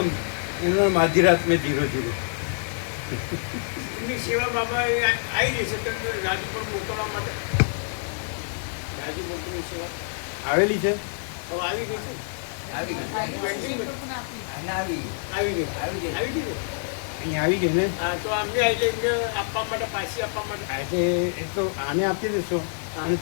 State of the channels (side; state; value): right; silent; digital silence